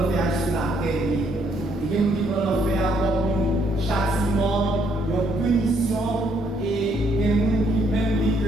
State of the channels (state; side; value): normal; both; correlation 0.70